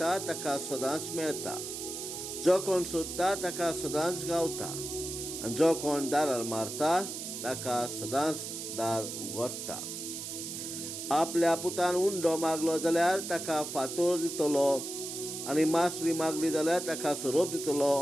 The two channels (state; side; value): noise; right; hiss, 7 dB below the sound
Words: ताका सदांच मेळटा, जो कोण सोदता ताका सदांच गावता, आनी जो कोण दारार मारता ताका सदांच दार उगडटा. आपल्या पुतान उंडो मागलो जाल्यार ताका फातर दितलो, आनी मासली मागली जाल्यार ताका सोरोप